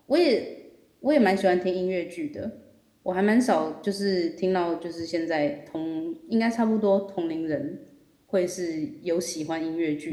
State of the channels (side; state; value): both; identical; correlation 1.00